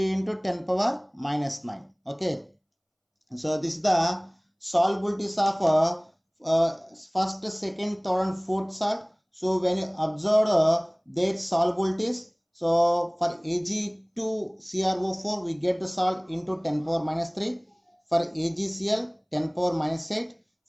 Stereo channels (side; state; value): both; identical; correlation 1.00